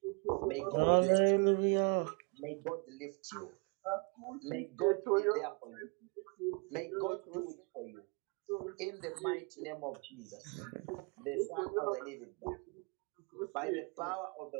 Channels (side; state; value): left; quieter; 33.1 dB